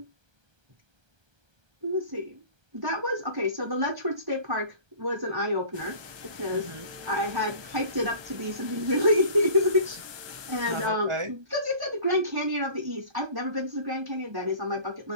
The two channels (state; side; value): late; left; 1.2 ms